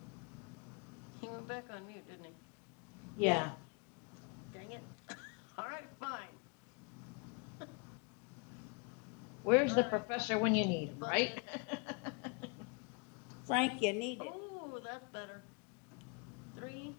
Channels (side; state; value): right; quieter; 32.3 dB